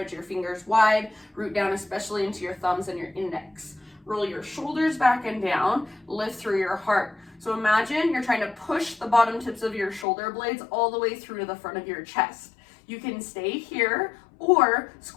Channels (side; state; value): right; drops out; at 10.1 s